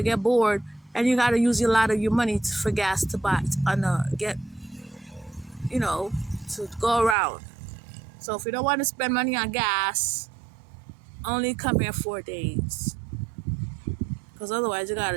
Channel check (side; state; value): left; drops out; at 7.2 s